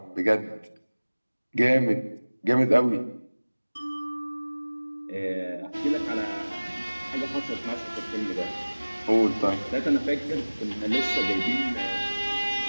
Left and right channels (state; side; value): inverted; both; correlation -1.00